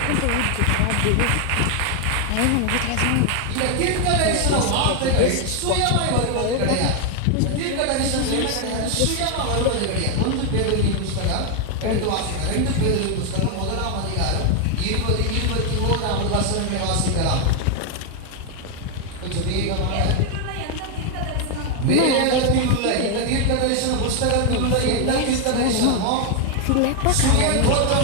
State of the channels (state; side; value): different; both; correlation 0.01